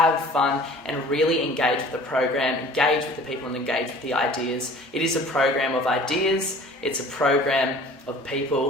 fun, and really engage with the program, engage with the people and engage with the ideas. It is a program of ideas, it's a program of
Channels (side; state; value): both; normal; correlation 0.47